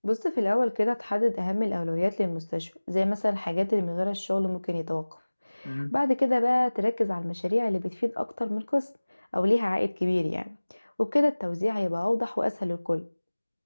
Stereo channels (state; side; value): inverted; both; correlation -1.00